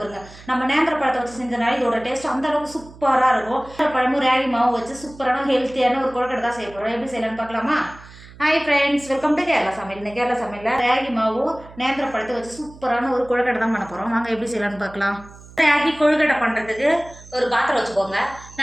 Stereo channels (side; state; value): right; noise; hum, 20 dB below the sound